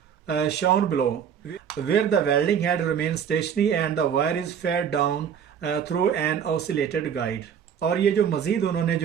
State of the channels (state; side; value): quieter; left; 8.0 dB